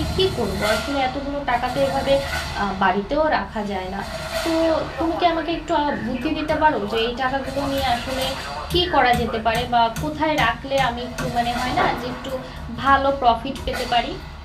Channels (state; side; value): identical; both; correlation 1.00